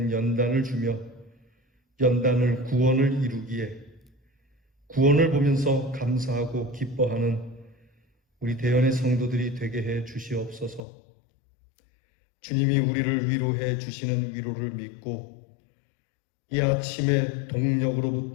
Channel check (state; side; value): drops out; right; at 10.8 s